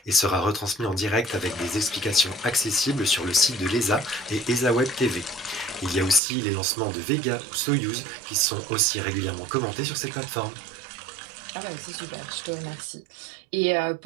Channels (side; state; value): left; drops out; at 6.2 s